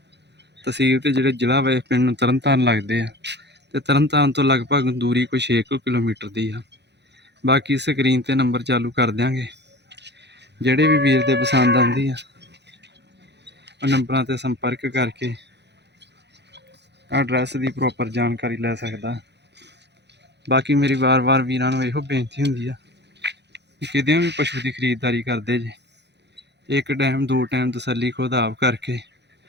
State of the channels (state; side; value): late; left; 0.50 ms